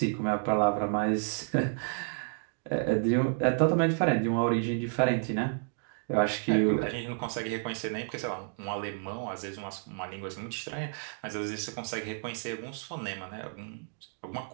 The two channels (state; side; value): silent; left; 57 dB below the other